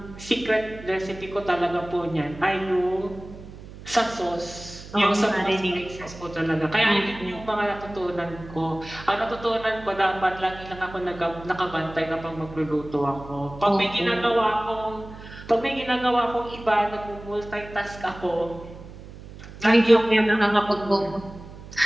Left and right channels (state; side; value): noise; right; hum, 16 dB below the sound